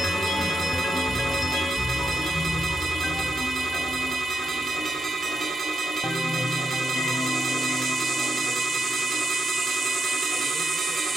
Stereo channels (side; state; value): both; normal; correlation 0.83